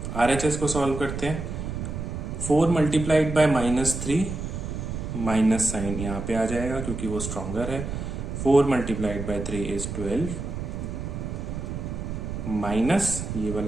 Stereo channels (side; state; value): right; noise; rumble, 5 dB below the sound